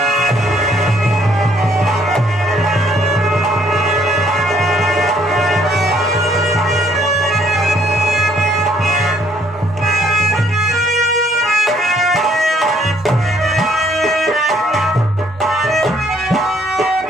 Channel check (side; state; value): both; normal; correlation 0.65